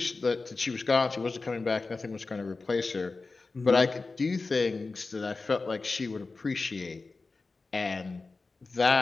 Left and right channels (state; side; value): quieter; right; 3.8 dB